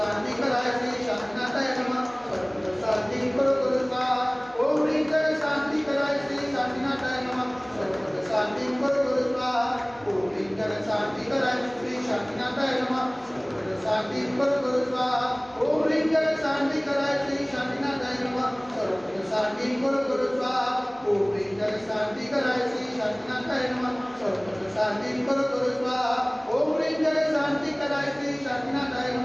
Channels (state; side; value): noise; left; hum, 29 dB below the sound